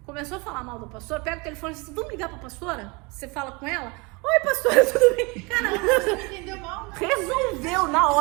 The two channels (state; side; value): quieter; left; 27.7 dB